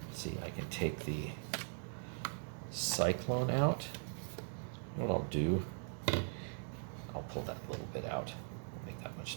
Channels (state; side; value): silent; left; 51 dB below the other